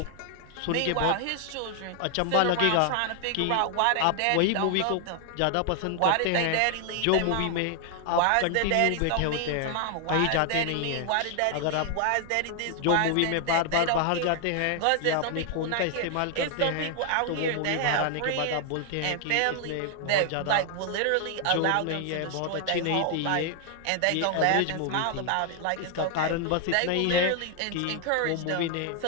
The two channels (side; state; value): both; different; correlation 0.00